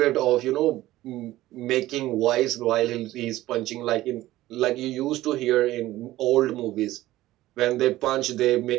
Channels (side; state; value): left; quieter; 16.1 dB